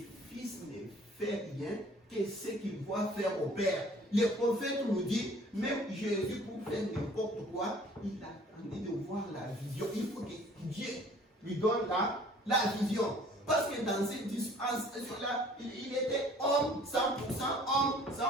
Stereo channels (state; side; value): normal; both; correlation 0.53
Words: fils ne fait rien que ce qu'il voit faire au Père. Le prophète nous dit, même Jésus, pour faire n'importe quoi, il attendait de voir la vision. Il faut que Dieu lui donne la vision. Parce que dans cette dispensation-là, il était homme 100%, homme